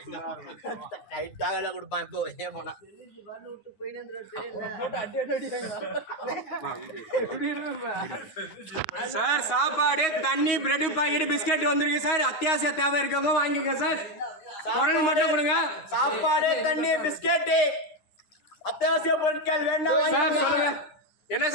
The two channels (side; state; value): right; late; 9.5 ms